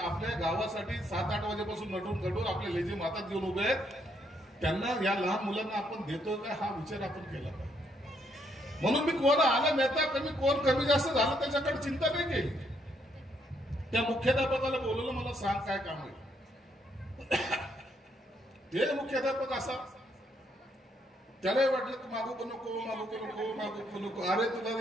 गावासाठी 7-8 वाजेपासून नटून आपले लेझीम हातात घेऊन उभे आहेत, त्यांना या लहान मुलांना आपण देतो का हा विचार आपण केला पाहिजे. म्हणून मी कोण आला नेता कोण कमी जास्त झालं त्याच्याकडे चिंता नाही केली. त्या मुख्याध्यापकाला बोलवलं, मला सांग काय काम आहे. ते मुख्याध्यापक असा, त्यालाही वाटलं की मागू नको. अरे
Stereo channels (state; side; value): normal; both; correlation 0.73